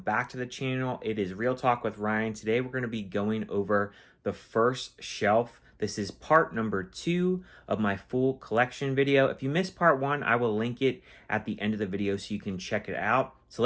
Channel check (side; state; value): both; identical; correlation 1.00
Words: to the channel. It is Real Talk with Ryan. Today we're going to be going over the first shelf. This is part number 2 of my full collection video. If you missed part 1, I will link it at the end of the video so you can check it out. So